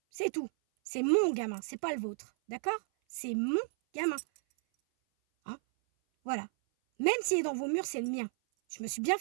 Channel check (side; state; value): left; silent; 56 dB below the other